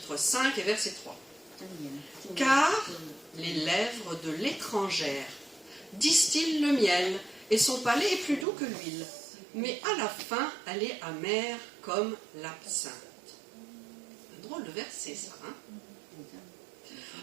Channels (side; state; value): left; drops out; at 8.5 s